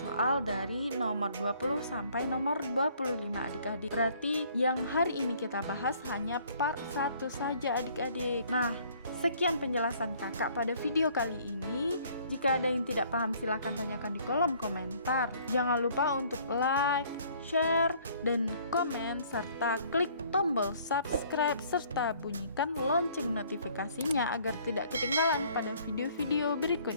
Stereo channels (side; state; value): both; inverted; correlation -0.59